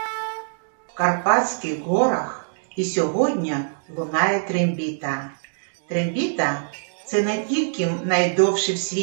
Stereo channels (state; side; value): silent; left; digital silence